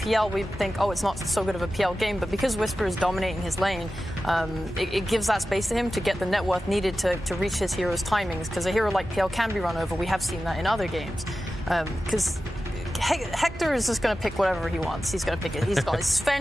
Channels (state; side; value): normal; both; correlation 0.94